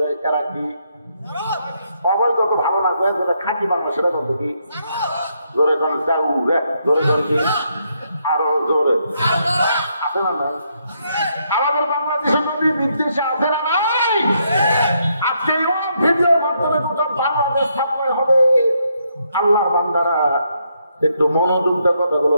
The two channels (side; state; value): both; inverted; correlation -0.76